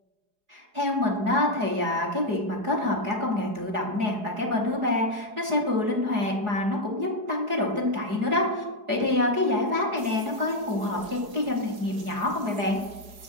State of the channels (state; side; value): late; left; 4.8 ms